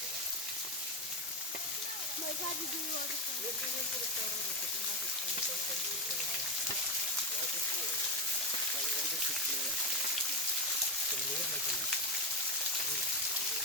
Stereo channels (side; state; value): both; normal; correlation 0.14